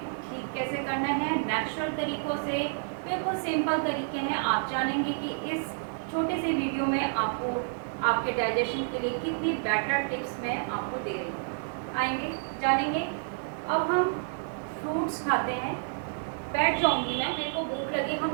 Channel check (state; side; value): silent; left; 58 dB below the other